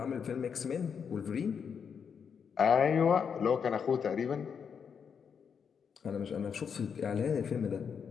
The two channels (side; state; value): right; quieter; 6.8 dB